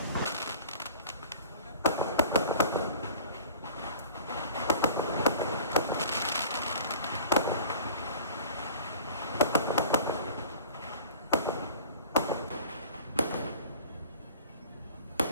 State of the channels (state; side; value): inverted; both; correlation -0.45